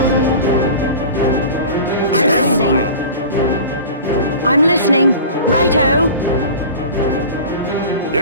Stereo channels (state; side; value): inverted; both; correlation -0.36